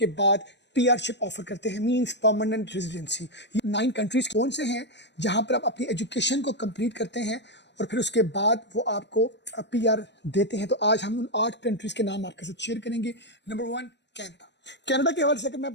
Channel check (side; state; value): right; late; 0.51 ms